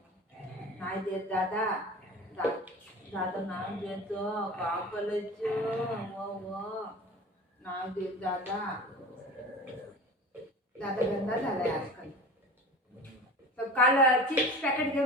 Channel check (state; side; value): normal; both; correlation 0.36